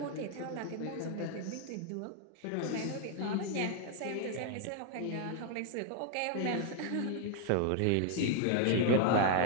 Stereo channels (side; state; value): both; different; correlation 0.00